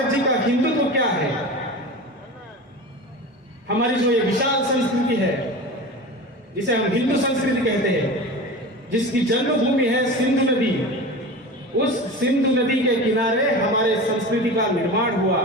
जी का हिंदुत्व क्या है? हमारी जो ये विशाल संस्कृति है जिसे हम हिंदू संस्कृति कहते हैं, जिसकी जन्मभूमि है सिंधु नदी, उस सिंधु नदी के किनारे हमारे संस्कृति का निर्माण हुआ,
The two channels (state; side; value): normal; both; correlation 0.31